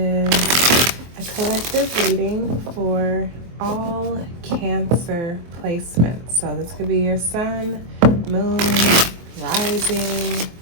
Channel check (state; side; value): late; left; 23 ms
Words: a collective reading for all Cancer placements. So this could be your sun, moon, rising,